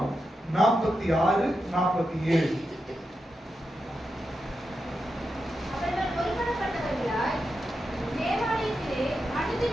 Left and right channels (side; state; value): both; normal; correlation 0.88